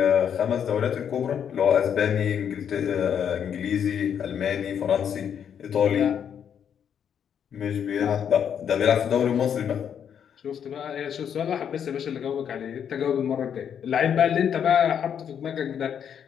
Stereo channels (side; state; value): right; quieter; 8.3 dB